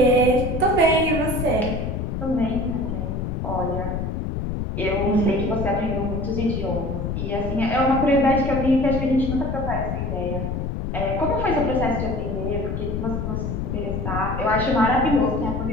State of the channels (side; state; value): left; noise; rumble, 3 dB below the sound